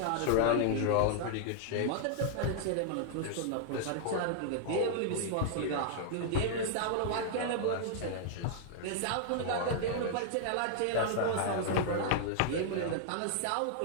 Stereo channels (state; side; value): different; both; correlation -0.01